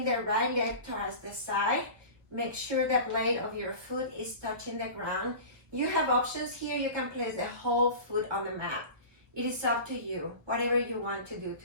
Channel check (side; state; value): left; late; 1.5 ms